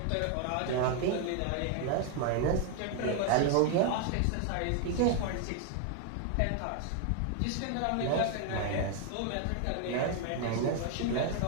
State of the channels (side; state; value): both; different; correlation 0.00